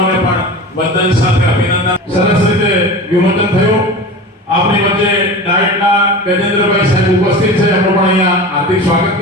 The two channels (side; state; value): both; normal; correlation 0.32